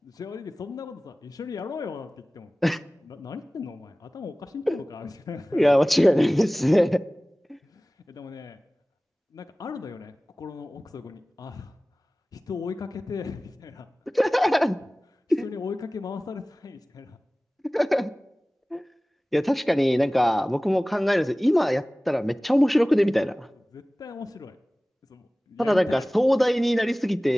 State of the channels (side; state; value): both; normal; correlation 0.98